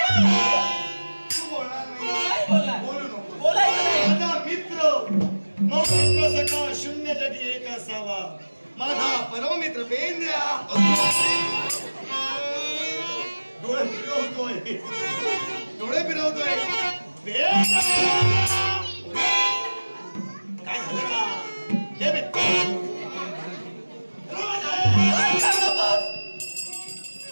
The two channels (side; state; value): both; inverted; correlation -1.00